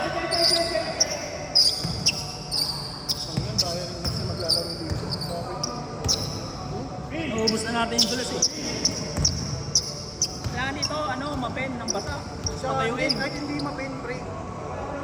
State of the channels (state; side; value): identical; both; correlation 1.00